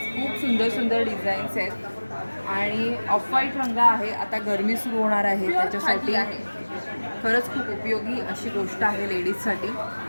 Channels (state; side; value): inverted; both; correlation -1.00